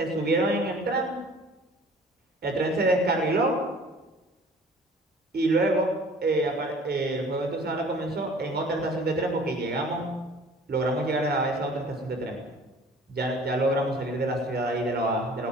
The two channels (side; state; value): both; normal; correlation 0.49